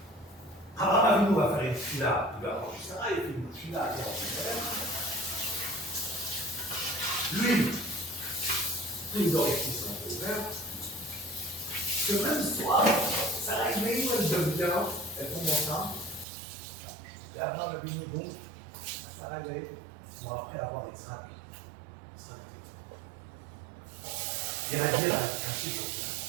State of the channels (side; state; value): left; drops out; at 16.2 s